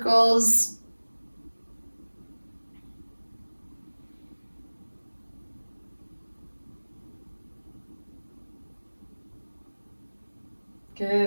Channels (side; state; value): both; inverted; correlation -1.00